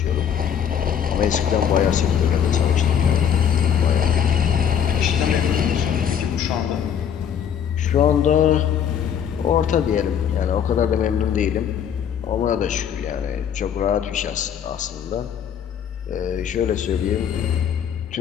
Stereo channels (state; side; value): quieter; right; 8.5 dB